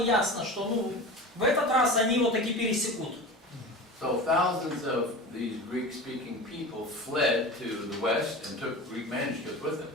что в этот раз они его таки пересекут. So thousands of these Greek-speaking people fled to the west and took Greek manuscripts with them.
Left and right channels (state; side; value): normal; both; correlation 0.31